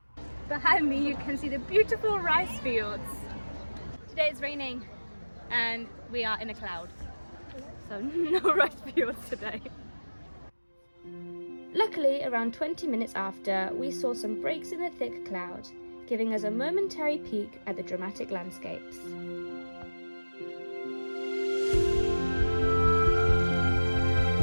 Behind me you can see the beautiful rice fields. Today it's raining and we are in a cloud, so no rice fields today. Luckily, around 20 minutes after, we saw some breaks in the thick cloud, giving us a momentary peek at the dramatic landscapes.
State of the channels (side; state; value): both; inverted; correlation -1.00